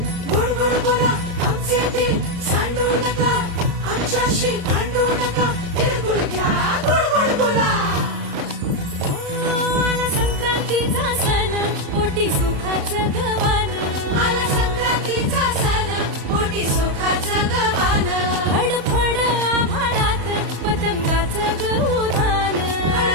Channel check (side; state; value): left; late; 34 ms